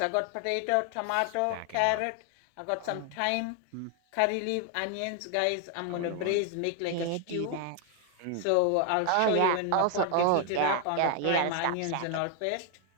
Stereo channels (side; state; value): both; different; correlation 0.00